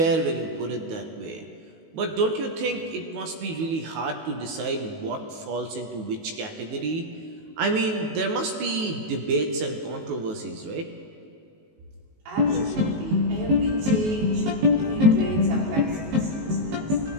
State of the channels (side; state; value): left; late; 19 ms